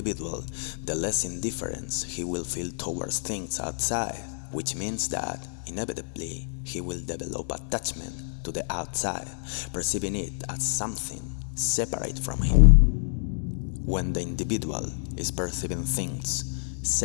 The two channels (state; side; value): silent; right; digital silence